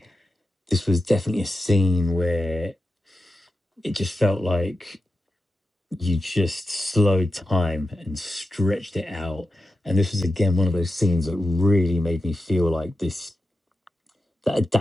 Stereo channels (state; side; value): normal; both; correlation 0.91